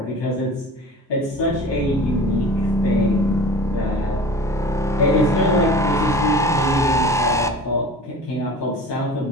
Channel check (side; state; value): both; normal; correlation 0.39